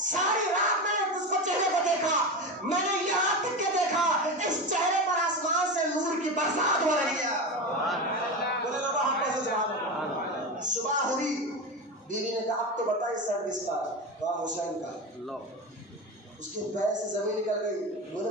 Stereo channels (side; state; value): both; normal; correlation 0.21